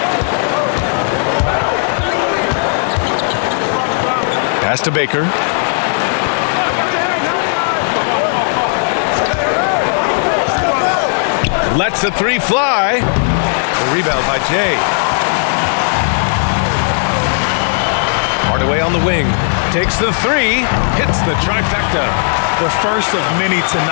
Pass to Baker. Lets the 3 fly. The rebound by Jay. Hardaway on the wing. Takes the 3. Hits the trifecta. The first of many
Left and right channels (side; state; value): right; silent; digital silence